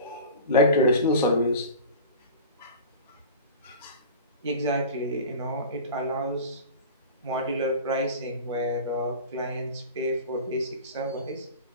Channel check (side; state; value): both; inverted; correlation -0.35